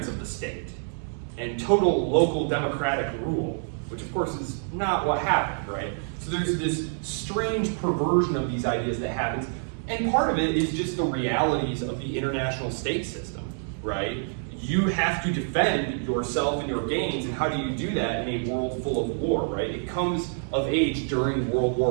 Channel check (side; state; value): left; silent; 57 dB below the other